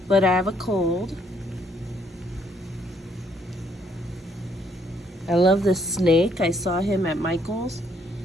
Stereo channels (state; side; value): normal; both; correlation 0.68